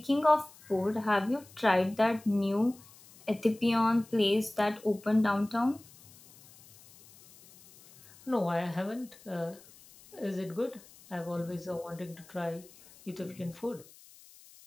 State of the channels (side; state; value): left; noise; hiss, 23 dB below the sound